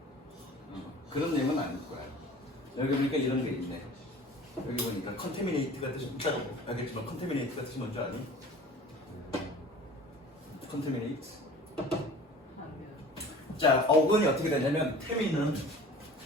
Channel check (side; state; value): both; normal; correlation 0.43